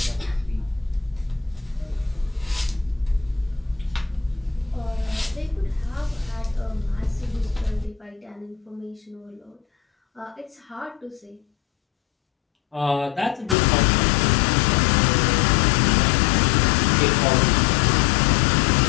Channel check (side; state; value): right; drops out; at 13.6 s